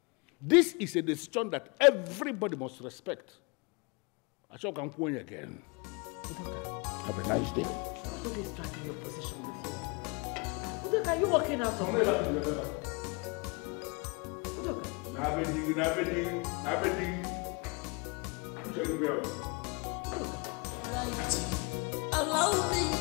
This is a decision that everybody must respect. I shall come point again. Have a nice day. Who is dragging your position with you? Udoka, are you walking out of here? Udoka. Allow me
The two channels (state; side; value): quieter; right; 30.4 dB